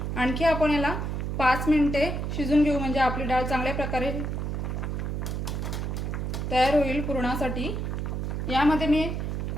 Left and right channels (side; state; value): right; noise; hum, 2 dB below the sound